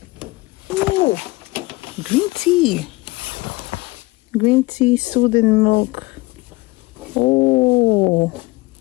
Ooh, green tea. Green tea, soothing milk. Oh,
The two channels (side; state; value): right; quieter; 22.5 dB